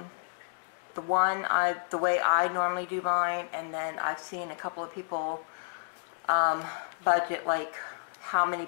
way I normally do mine, and then I've seen a couple of people budget like how many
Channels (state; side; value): silent; right; digital silence